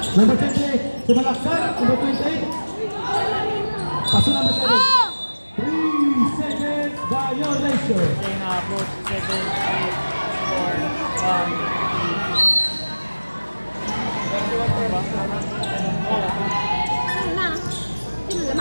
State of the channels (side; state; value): both; inverted; correlation -1.00